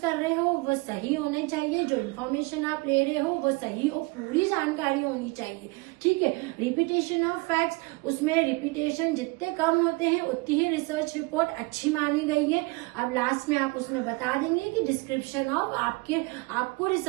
रहे हो वो सही होने चाहिए, जो इन्फॉर्मेशन आप ले रहे हो वो सही हो, पूरी जानकारी होनी चाहिए, ठीक है। रिपीटेशन ऑफ फैक्ट्स, उसमें रिपीटेशन जितने कम होते हैं उतनी ही रिसर्च रिपोर्ट अच्छी मानी गई है। अब लास्ट में आप उसमें बता देंगे कि डिस्क्रिप्शन ऑफ आपको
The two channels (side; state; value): left; quieter; 26.5 dB